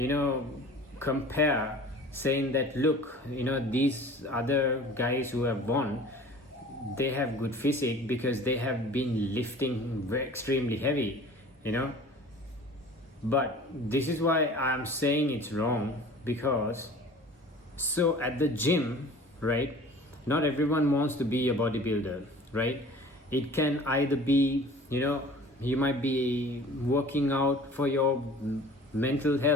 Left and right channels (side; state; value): both; normal; correlation 0.44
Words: compare, saying that look, these other guys who have won, they have good physique because they have been lifting extremely heavy. But this is why I'm saying it's wrong, because so at the gym, right, not everyone wants to be a bodybuilder, right? It can either be, you might be working out for your mental